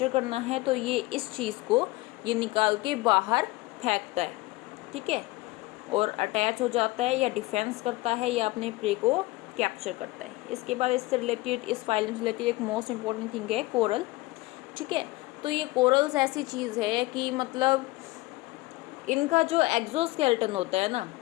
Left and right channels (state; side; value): quieter; right; 20.6 dB